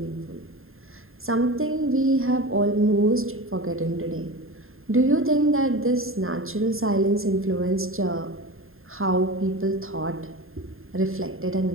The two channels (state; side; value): late; left; 0.61 ms